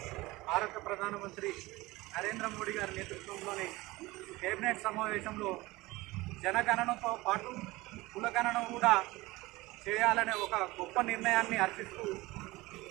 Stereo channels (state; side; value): quieter; left; 20.5 dB